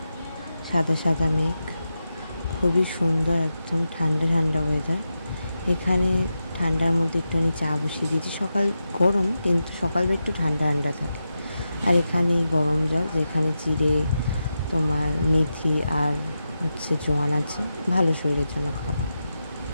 সাদা সাদা মেঘ, খুবই সুন্দর, একদম ঠান্ডা ঠান্ডা ওয়েদার। এখানে ঠান্ডার মধ্যে একটুখানি চা বসিয়ে দিয়েছি। সকাল গরম, কিন্তু সকালবেলা একটু ঠান্ডা ঠান্ডা থাকে। আর এখানে গরম জল, যেখানে জিরে, তোমার মেথি আর জোয়ান আছে, ভালো শরীরের জন্য খাওয়া।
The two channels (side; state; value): both; inverted; correlation -0.89